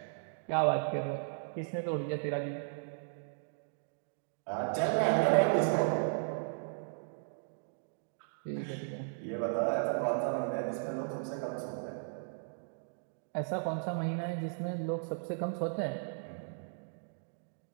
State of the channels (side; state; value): left; silent; digital silence